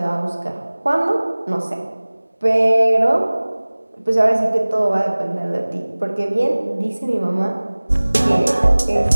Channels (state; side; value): inverted; both; correlation -1.00